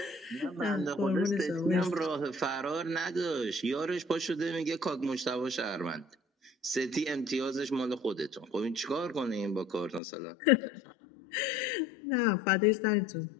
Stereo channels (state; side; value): drops out; right; at 10.0 s